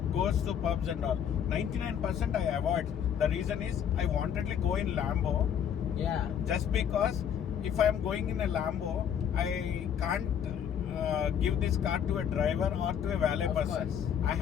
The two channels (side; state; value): right; quieter; 8.6 dB